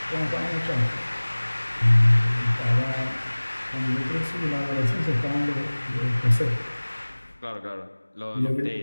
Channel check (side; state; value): both; inverted; correlation -1.00